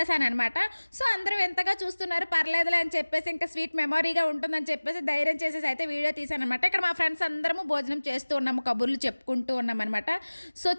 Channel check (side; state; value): both; inverted; correlation -1.00